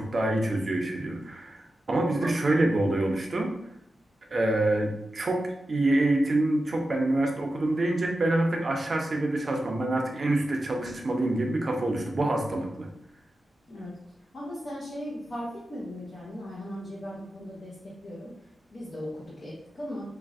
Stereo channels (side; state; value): both; normal; correlation 0.92